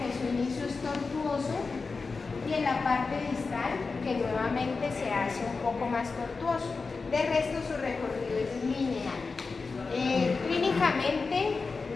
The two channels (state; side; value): quieter; right; 4.3 dB